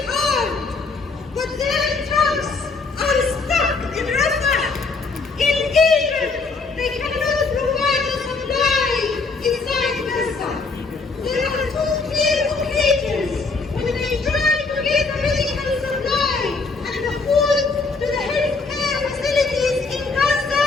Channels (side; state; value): right; quieter; 4.1 dB